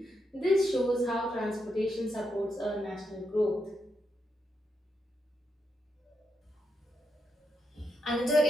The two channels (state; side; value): normal; both; correlation 0.82